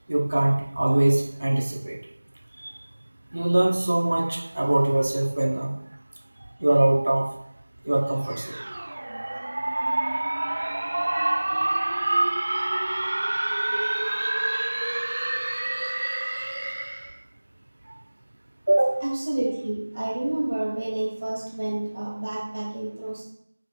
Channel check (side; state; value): both; inverted; correlation -1.00